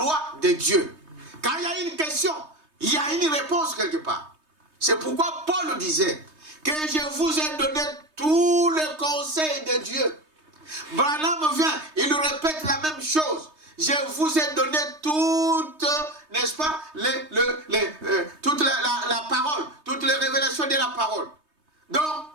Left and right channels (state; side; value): late; left; 3.2 ms